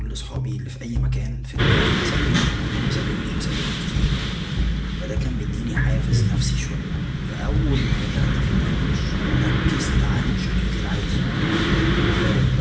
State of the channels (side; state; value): both; identical; correlation 1.00